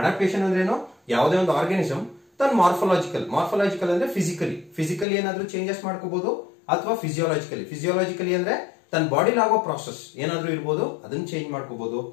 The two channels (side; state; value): right; drops out; at 5.1 s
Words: adaptation ಅಂದ್ರೆ ಏನು? ಯಾವುದೇ ಒಂದು organism ತನ್ನ morphological ಅಂದ್ರೆ physically ಏನಾದ್ರೂ ಚೇಂಜಸ್ ಮಾಡ್ಕೋಬಹುದು ಅಥವಾ ಫಿಸಿಯೋಲಾಜಿಕಲಿ ಅಂದ್ರೆ ತನ್ನ ಬಾಡಿಲಿ ಆಗೋ ಪ್ರಾಸೆಸ್ ಏನಾದ್ರೂ ಇರಬಹುದು ಅದನ್ನ ಚೇಂಜ್ ಮಾಡ್ಕೋಬಹುದು